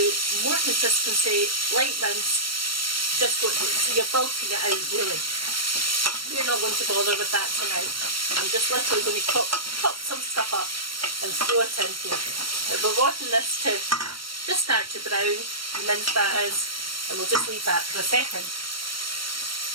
more consistency, light mince, just so you're bulking it out really. You're not going to bother with that tonight. I'm just literally going to chop some stuff up and throw it in here. But we're wanting this to just start to brown, the mince that is, and we'll just leave that for a second.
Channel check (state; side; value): late; left; 0.74 ms